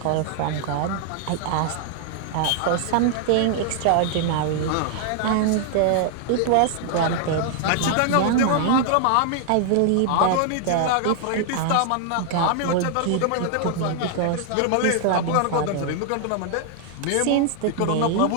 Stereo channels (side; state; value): both; different; correlation 0.00